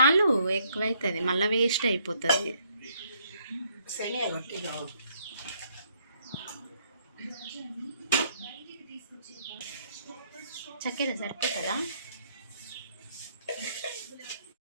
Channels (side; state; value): both; inverted; correlation -0.69